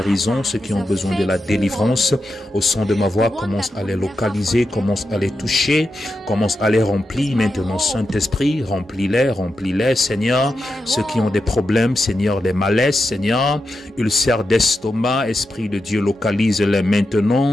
ceux qui ont besoin de la délivrance, Au son de ma voix, commence à les localiser, commence à les toucher, commence à les remplir. Maintenant, Saint-Esprit, remplis-les, Seigneur. Ceux qui ont des problèmes, Seigneur, des malaises, Seigneur, ulcères d'estomac, Esprit de Dieu, localise-les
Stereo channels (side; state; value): both; normal; correlation 0.88